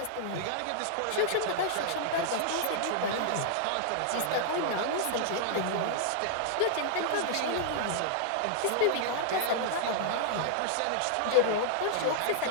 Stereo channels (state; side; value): different; both; correlation -0.01